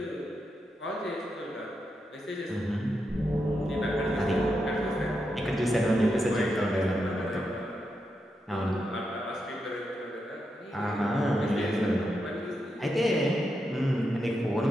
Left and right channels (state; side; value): normal; both; correlation 0.85